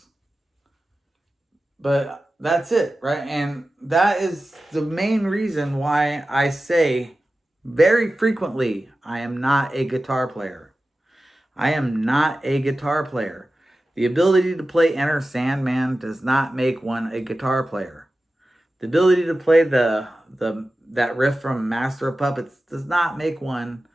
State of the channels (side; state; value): both; normal; correlation 0.94